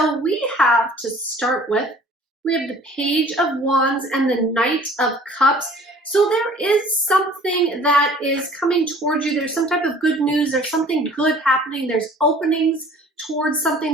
we have to start with, we have the Page of Wands and the Knight of Cups. So there is something that is coming towards you. There's some type of good news. There's something good happening. There's openings towards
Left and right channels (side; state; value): both; normal; correlation 0.51